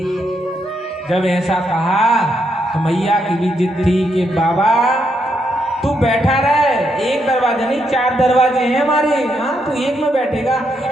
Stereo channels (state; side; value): normal; both; correlation 0.78